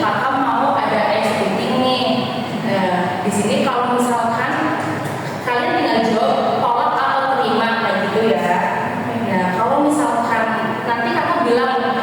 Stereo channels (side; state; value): both; identical; correlation 1.00